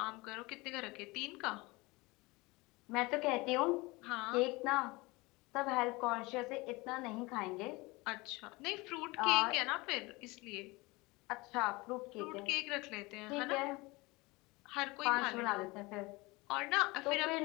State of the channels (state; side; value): quieter; right; 23.5 dB